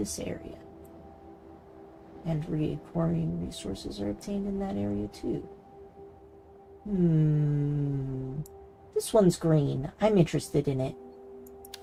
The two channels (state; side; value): identical; both; correlation 1.00